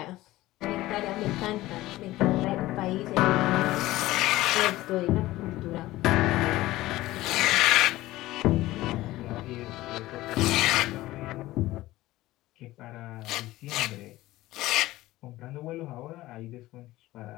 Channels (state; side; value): quieter; right; 17.2 dB